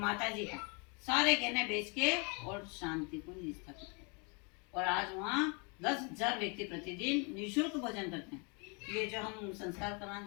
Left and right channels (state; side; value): quieter; right; 33.2 dB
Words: जी का, सारे गहने बेच के और शांति को स्थापित किया। और आज वहाँ 10,000 व्यक्ति प्रतिदिन निःशुल्क भोजन करते हैं। ये जो हम संस्कार कराने